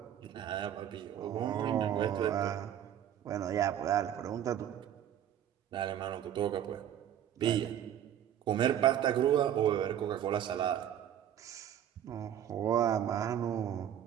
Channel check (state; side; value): quieter; left; 10.4 dB